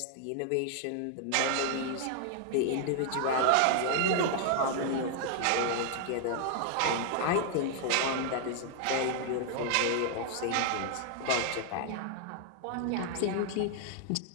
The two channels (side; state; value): both; different; correlation 0.00